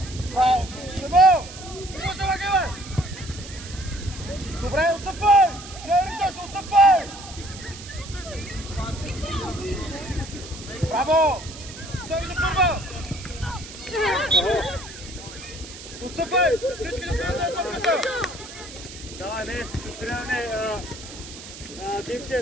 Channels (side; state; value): right; noise; hiss, 14 dB below the sound